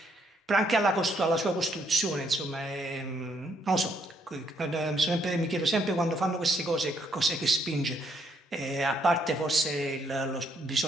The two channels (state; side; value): normal; both; correlation 0.71